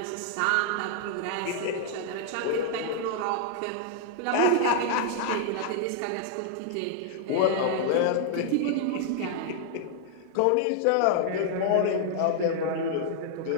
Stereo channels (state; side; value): different; both; correlation -0.01